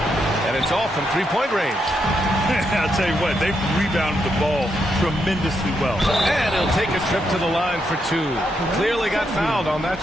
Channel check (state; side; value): normal; both; correlation 0.81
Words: And it's all from 3-point range. I'll tell you what, they've rebounded the ball tremendously well. And he'll take a trip to the line for 2. Clearly got fouled on that